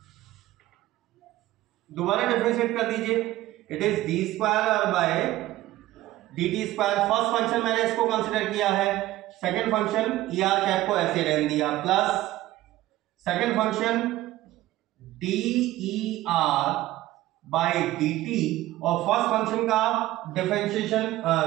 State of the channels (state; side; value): quieter; left; 16.0 dB